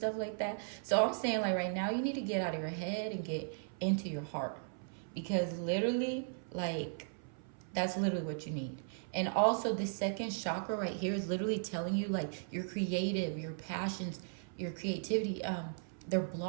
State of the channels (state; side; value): silent; left; 53 dB below the other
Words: like that. So I'm saying, like, right now you need to get out of your head and get into your heart, because literally, like, that's literally what you need. And also, the second chakra right here is literally telling you, like, your creative, your passions, your creativity, they're